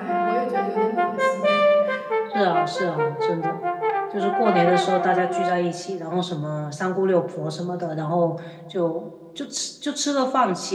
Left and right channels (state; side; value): identical; both; correlation 1.00